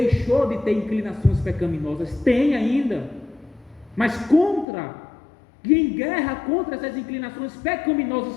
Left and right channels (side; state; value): right; drops out; at 4.7 s